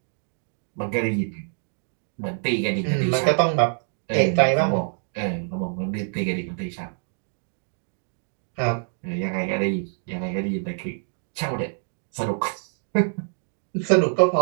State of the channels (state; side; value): silent; left; 61 dB below the other